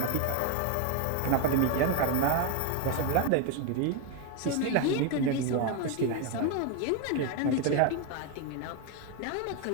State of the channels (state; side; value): different; both; correlation 0.02